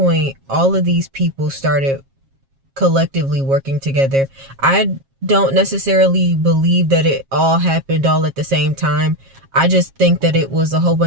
all of these people started collectively working together. I don't necessarily believe that it all happened all at the same time. I just think that it was a whole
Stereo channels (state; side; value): late; left; 7.4 ms